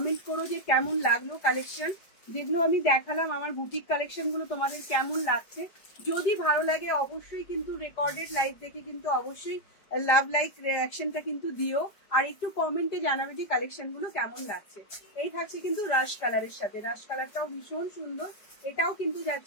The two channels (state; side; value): late; right; 5.0 ms